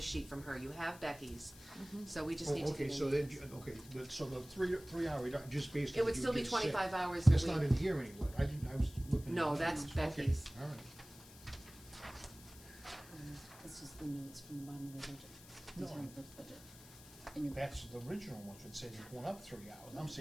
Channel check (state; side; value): noise; left; hiss, 19 dB below the sound